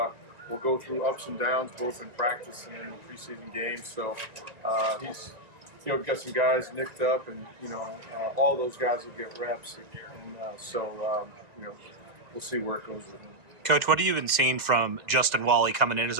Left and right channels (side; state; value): left; late; 1.9 ms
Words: go through ups and downs, both in practice and in the preseason games. So he's, got some guys nicked up, and all those guys will get reps, and we'll see where it goes with him. Coach, what have you been seeing from Justin Walle coming in as